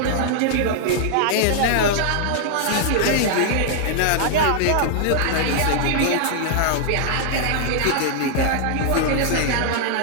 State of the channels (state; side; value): different; both; correlation 0.00